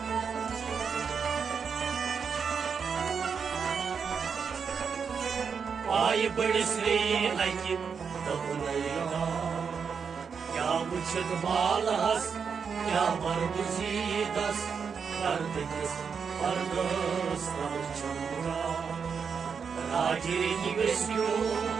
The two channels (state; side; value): quieter; left; 6.2 dB